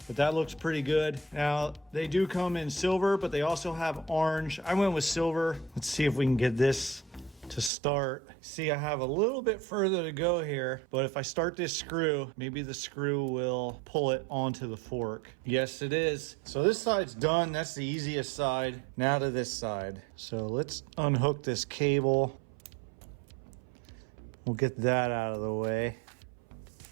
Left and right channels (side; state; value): left; drops out; at 7.7 s